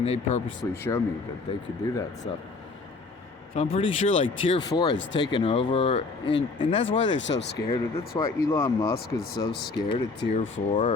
they purposely show me that they could do that stuff. So I'm pretty sure like Tier 4 has taken over, and that's why they're so scared. That's why Elon Musk is so scared of Tier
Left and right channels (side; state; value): right; quieter; 3.9 dB